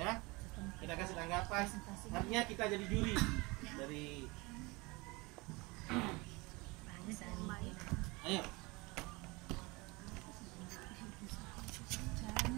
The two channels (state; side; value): quieter; left; 25.0 dB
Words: Kita kasih tanggapan. Artinya kita jadi juri dari. Ayo.